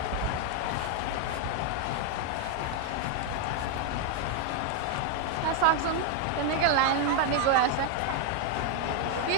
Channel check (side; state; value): both; different; correlation 0.01